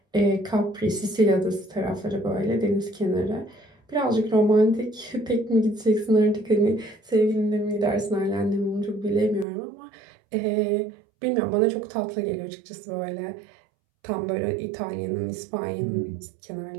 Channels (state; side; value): drops out; left; at 9.5 s